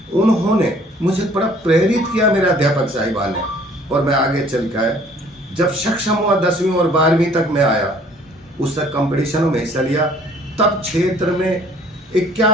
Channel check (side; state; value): both; normal; correlation 0.56